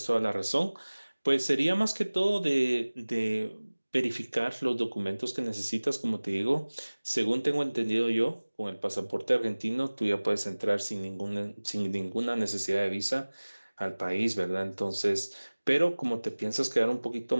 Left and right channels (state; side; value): inverted; both; correlation -1.00